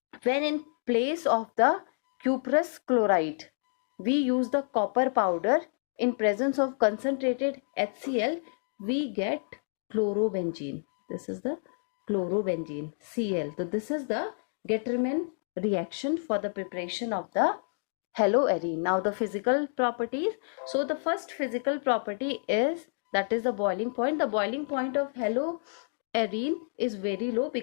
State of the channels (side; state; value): right; silent; digital silence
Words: when in place of the cuprous chloride, we use the copper powder in presence of concentrated HCl, we get chlorobenzene. This is the chlorobenzene, Cl. So this is the Getterman reaction for the preparation of the haloarine. Now the physical properties. So the first physical property is, that is the boiling point. The boiling point of haloarine is very low